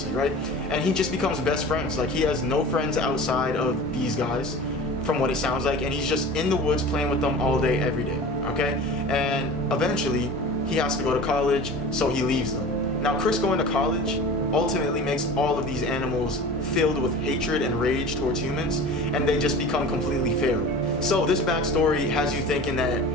right? And he just becomes best friends. Like, he has no friends outside of these guys, from what it sounds like, and he's just in the woods playing with them all day, every day, okay? And eventually, he has to go to college, so he leaves them. Now, Chris going to college ultimately makes all of these animals filled with hatred and rage towards humans, and they just become completely feral. So this backstory has you thinking that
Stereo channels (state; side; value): normal; both; correlation 0.37